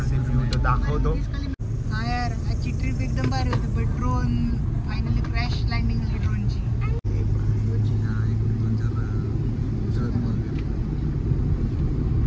ते व्ह्यू तो दाखवतो. हाँ यार आजची ट्रिप एकदम भारी होती. पण ड्रोन फायनली क्रॅश लँडिंग झाली ड्रोनची.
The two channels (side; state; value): both; identical; correlation 1.00